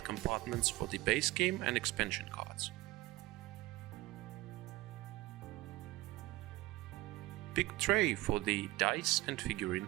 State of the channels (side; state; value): left; quieter; 19.4 dB